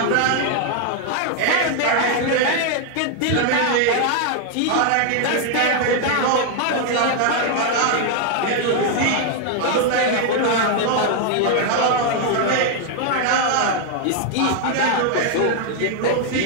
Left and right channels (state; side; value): different; both; correlation 0.00